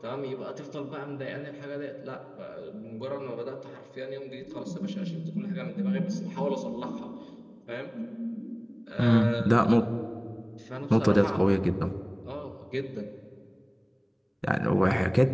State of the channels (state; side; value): identical; both; correlation 1.00